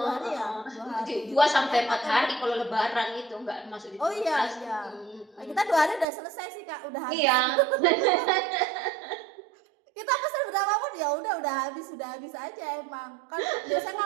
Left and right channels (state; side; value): drops out; left; at 6.1 s